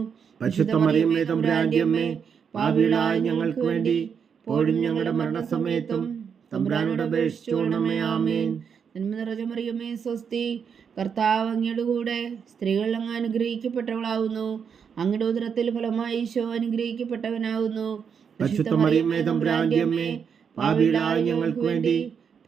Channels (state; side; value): quieter; left; 6.9 dB